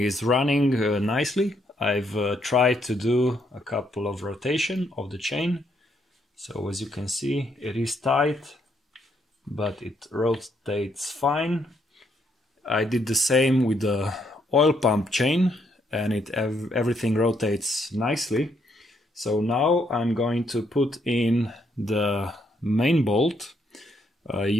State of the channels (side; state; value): both; normal; correlation 0.74